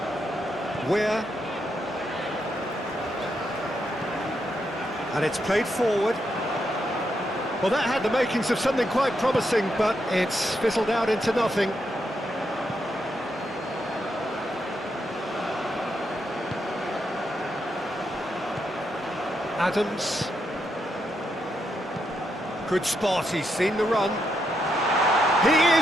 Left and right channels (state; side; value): normal; both; correlation 0.81